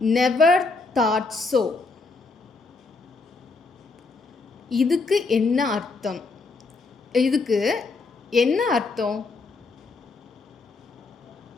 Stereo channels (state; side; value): quieter; right; 3.9 dB